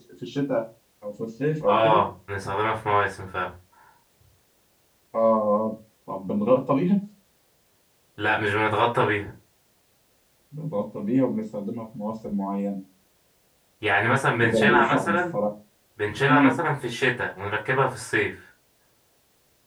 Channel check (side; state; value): both; identical; correlation 1.00